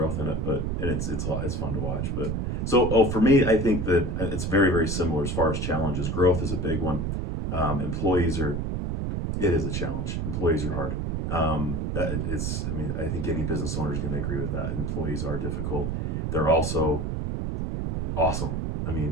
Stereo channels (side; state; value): right; noise; rumble, 1 dB below the sound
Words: in it, and it's fun to watch. But for me, I think that it's very, very similar as far as challenges. Growth is a big one. It is a challenge. Employees are hard. I think any business owner is going to agree with that. Employees are difficult. They're also awesome. I